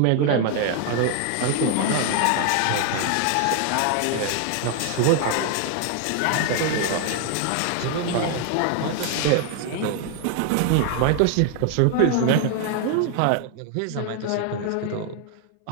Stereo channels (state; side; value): different; both; correlation 0.00